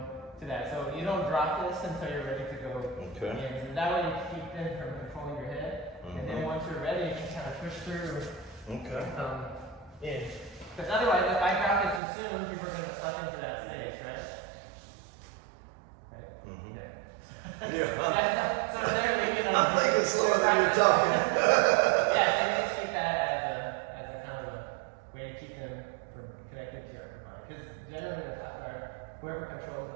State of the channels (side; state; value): left; drops out; at 12.0 s